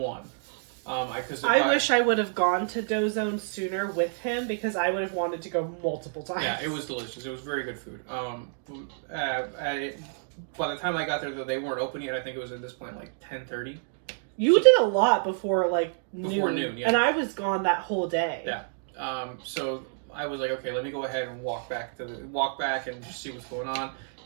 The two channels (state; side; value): silent; left; digital silence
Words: I wish I would have gone to Dozone sooner with him because I would have wanted to go multiple times. Yeah, it was delicious. It was very good food. By the time I got there, though, they weren't open yet. I think it was at this point like 10:30. You did a lot before like noon. Before noon, yeah. And I was gone that whole day. Yeah. So I was like, okay, let me go ahead and walk back and just see what's going on.